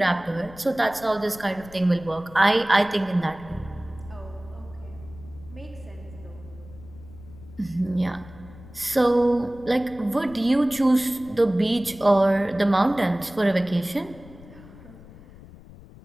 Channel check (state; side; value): noise; left; rumble, 19 dB below the sound